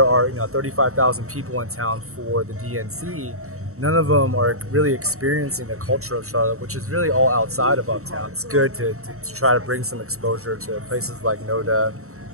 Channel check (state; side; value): late; left; 0.64 ms